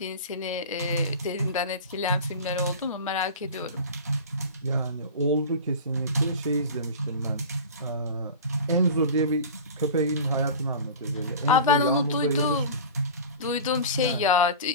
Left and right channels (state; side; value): inverted; both; correlation -0.34